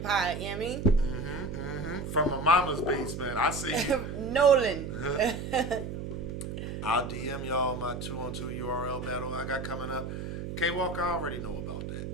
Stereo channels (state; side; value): noise; right; hum, 6 dB below the sound